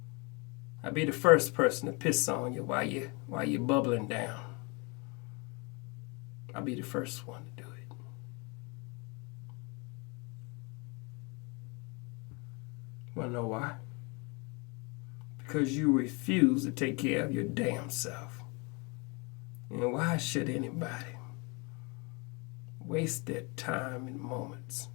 I'll be the first person to piss on you while you're bubbling down. I'll be the first one to do it. Wanna know why? Because you refuse to take care of your damn self. And why should anybody waste their time and moments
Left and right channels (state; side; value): quieter; right; 30.0 dB